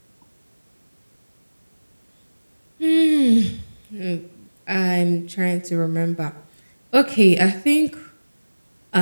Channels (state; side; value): inverted; both; correlation -1.00